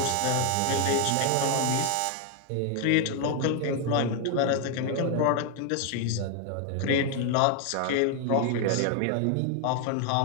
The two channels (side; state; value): both; different; correlation 0.00